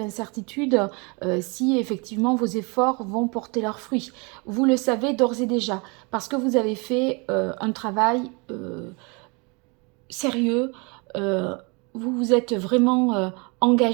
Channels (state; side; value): quieter; left; 30.6 dB